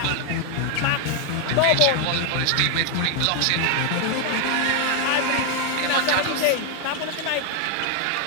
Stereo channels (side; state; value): both; different; correlation 0.00